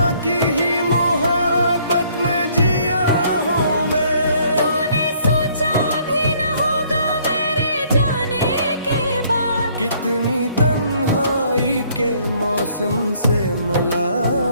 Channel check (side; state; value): both; inverted; correlation -0.63